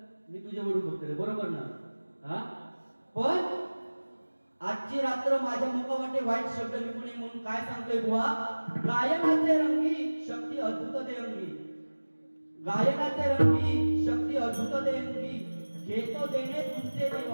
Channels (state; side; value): inverted; both; correlation -1.00